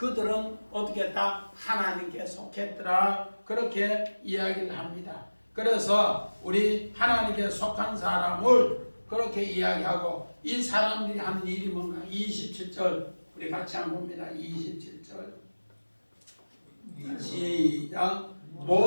어떻게 했다? 하나님께 속했더라. 그렇게 이야기를 합니다. 그래서 우리 하나님께 속한 사람을 그렇게 이야기하고, 이 사람들이 하는 일이 뭔가? 27절 우리 같이 한번 봅니다. 27절 시작.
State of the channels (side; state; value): both; inverted; correlation -1.00